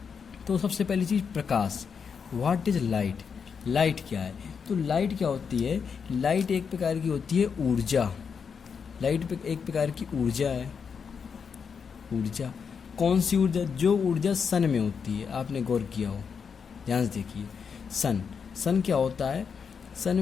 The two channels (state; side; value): quieter; right; 6.3 dB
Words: तो सबसे पहली चीज़ प्रकाश। What is light? लाइट क्या है? तो लाइट क्या होती है? लाइट एक प्रकार की होती है ऊर्जा। लाइट एक प्रकार की ऊर्जा है। ऊर्जा कौन सी ऊर्जा? जो ऊर्जा सन में होती है। आपने गौर किया हो, ध्यान से देखिए। सन क्या होता है? सन